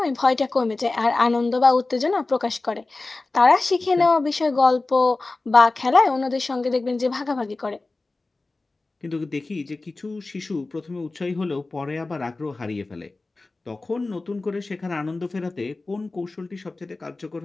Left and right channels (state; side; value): quieter; right; 3.3 dB